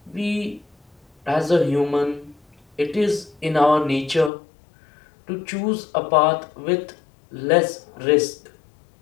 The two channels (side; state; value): right; drops out; at 4.3 s